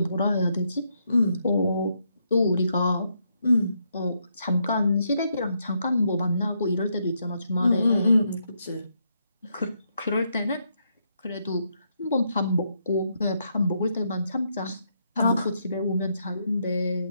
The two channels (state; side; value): inverted; both; correlation -0.78